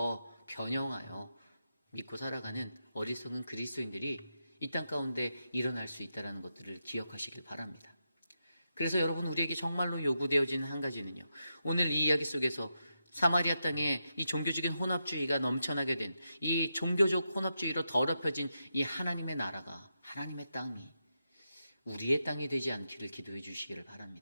변형하여 믿고 살아가는 어리석은 그리스도인들이 이 땅 가운데 일어날 수 있다는 것들을 기억하시길 바랍니다. 그래서 여러분, 우리에게 정말로 요구되어지는 한 가지는요, 오늘 이 이야기 속에서 사마리아 땅에 이 종교적인 혼합주의가 넘쳐나게 된, 이 종교적 혼합주의로 더럽혀진 이 하나님의 나라가, 하나님의 땅이 우리의 땅이 되지 않기를 기도해 주시기를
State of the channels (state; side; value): inverted; both; correlation -0.86